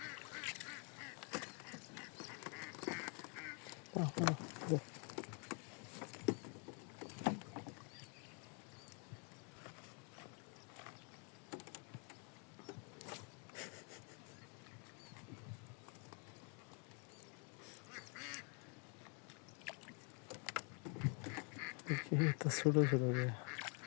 এটা ছোট ছোট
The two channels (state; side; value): quieter; right; 37.5 dB